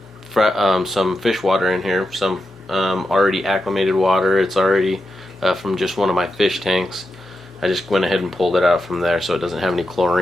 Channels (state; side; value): normal; both; correlation 0.88